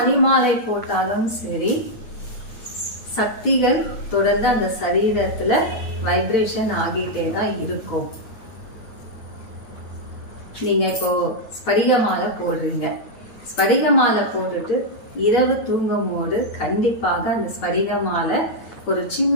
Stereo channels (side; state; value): right; late; 9.0 ms